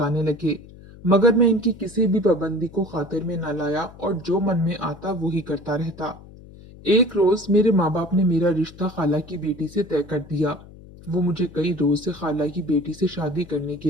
लगे। मगर मैं इनकी किसी भी पाबंदी को खातिर में न लाया, और जो मन में आता वो ही करता रहता। एक रोज मेरे माँ बाप ने मेरा रिश्ता खाला की बेटी से तय कर दिया। वो मुझे कई रोज से खाला की बेटी से शादी करने के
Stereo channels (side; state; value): left; noise; hum, 19 dB below the sound